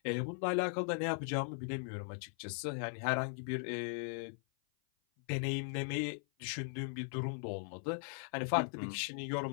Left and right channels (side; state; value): right; silent; 52 dB below the other